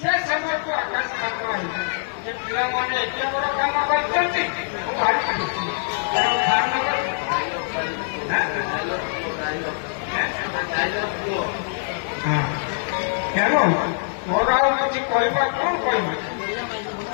ସମୟକୁ ଆକାଶ ପାତ୍ର ହେଇଛି। ଯେ ପିଲାମାନେ ଏତେ ବଡ଼ କାମ କରିଛନ୍ତି, ମୁଁ ଭାରି ଖୁସି। ତେଣୁ ତେଣୁ ମୋର ଆଉ କିଛି କହିବା କ'ଣ କହିବି?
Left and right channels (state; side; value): silent; right; 63 dB below the other